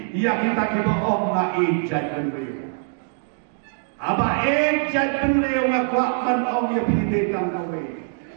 ya kita kiba om nga ijat penleo. Aba ijat penleo nga kuapan om ya pide tang kawe.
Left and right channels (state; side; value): silent; left; digital silence